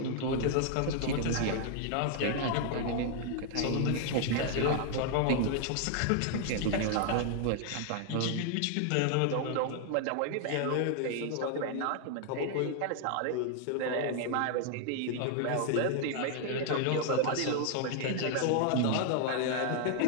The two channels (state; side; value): different; both; correlation 0.00